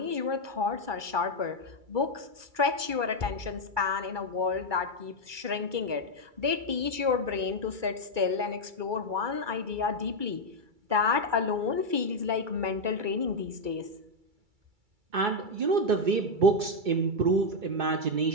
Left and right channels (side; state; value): left; late; 2.3 ms